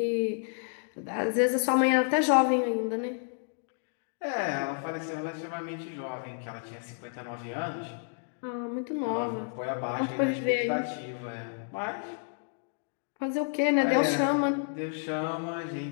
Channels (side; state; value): right; silent; digital silence